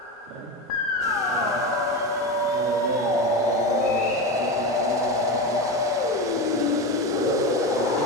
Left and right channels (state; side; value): normal; both; correlation 0.20